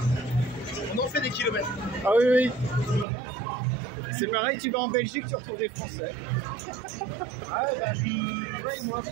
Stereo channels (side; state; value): left; drops out; at 3.1 s